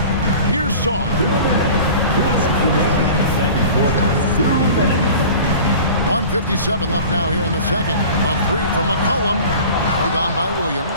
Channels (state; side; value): inverted; both; correlation -0.40